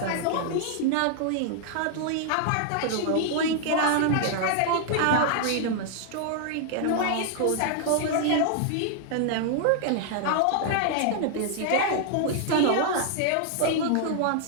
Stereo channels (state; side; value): different; both; correlation 0.00